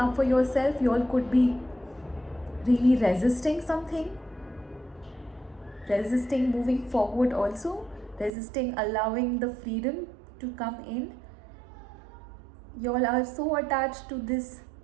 for yourself. You all could be really resisting something, resisting moving forward, also resisting allowing the freedom to come in. You all are so attached to this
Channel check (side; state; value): left; drops out; at 8.3 s